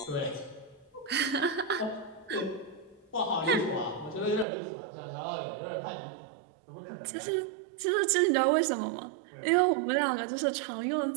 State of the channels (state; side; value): drops out; left; at 4.5 s